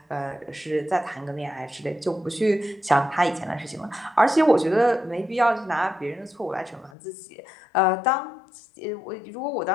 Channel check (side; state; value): right; drops out; at 6.9 s